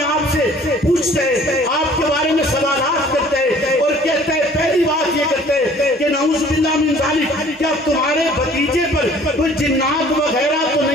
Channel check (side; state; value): both; normal; correlation 0.53